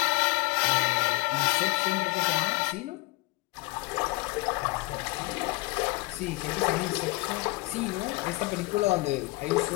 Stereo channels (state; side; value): quieter; right; 23.3 dB